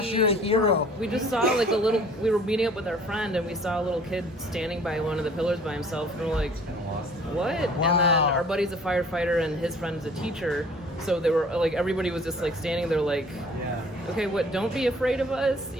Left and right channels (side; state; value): both; normal; correlation 0.52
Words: you're a hero. We just saw like we were meeting up with our friend, and we saw a little kid standing by one of the pillars by himself, and we're like, what? Wow. And then our buddy's a firefighter and his friend's a teacher, so they were like, everybody was just like standing there like, okay, what, don't be afraid of us,